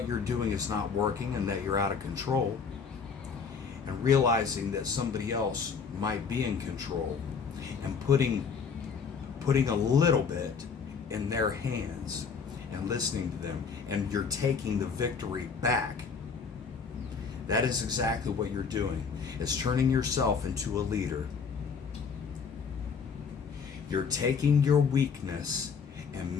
you're doing is not working and that you're out of control, and realizing that somebody else might be in control, and putting a little bit in their hands and listening to them, and you're taking the victory back. That is exactly what you're doing. It's turning yourself into a leader. You're taking your weakness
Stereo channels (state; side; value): quieter; right; 5.8 dB